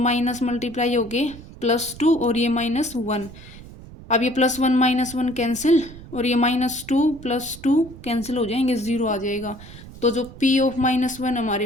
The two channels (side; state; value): right; noise; rumble, 16 dB below the sound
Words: मल्टीप्लाई हो गए +2 और ये -1, अब ये +1 -1 कैंसिल और ये -2 +2 कैंसिल हो जाएंगे, 0 आ जाएगा। तो जो P(-1)